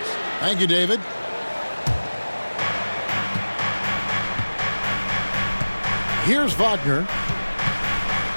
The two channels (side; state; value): both; inverted; correlation -1.00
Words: Thank you, David. Here's Wagner.